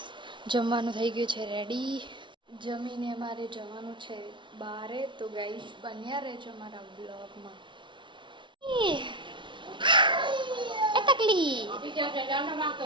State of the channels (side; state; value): left; late; 0.24 ms